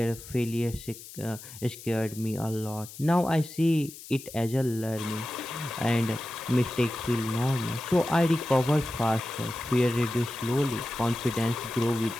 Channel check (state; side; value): noise; left; hiss, 15 dB below the sound